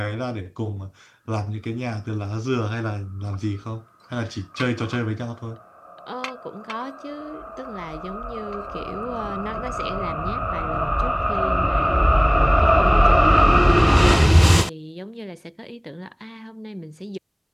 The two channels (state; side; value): identical; both; correlation 1.00